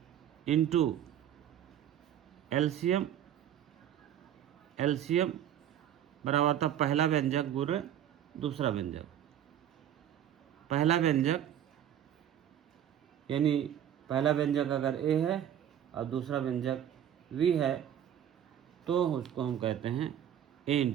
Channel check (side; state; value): left; quieter; 10.4 dB